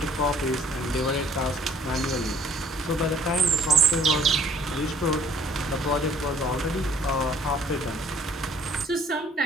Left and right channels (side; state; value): both; normal; correlation 0.58